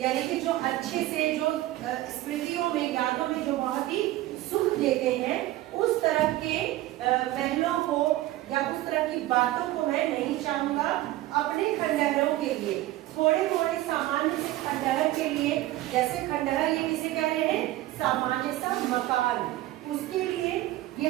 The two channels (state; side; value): quieter; left; 16.3 dB